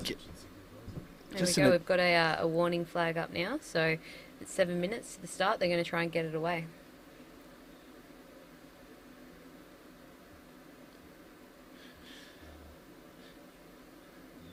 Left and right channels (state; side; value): identical; both; correlation 1.00